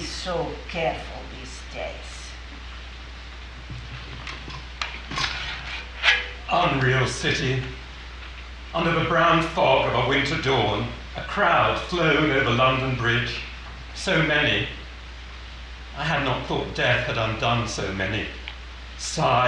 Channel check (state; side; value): identical; both; correlation 1.00